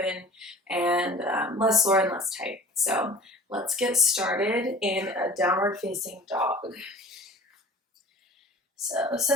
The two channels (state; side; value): normal; both; correlation 0.44